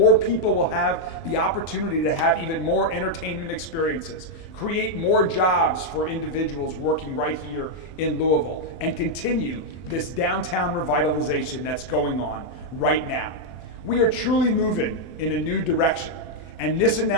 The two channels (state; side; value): late; right; 24 ms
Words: people will have the opportunity to have even more entertainment experiences, create more jobs for individuals working right here in Louisville, and continue this downtown revitalization that's going on right now. We are truly moving in a new direction, and this